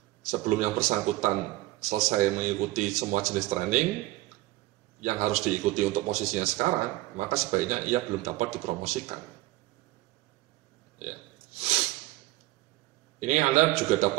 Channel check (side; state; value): left; quieter; 18.3 dB